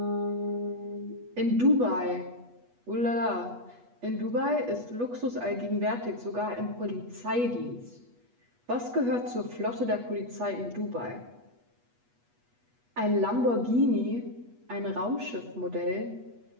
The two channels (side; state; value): left; late; 8.2 ms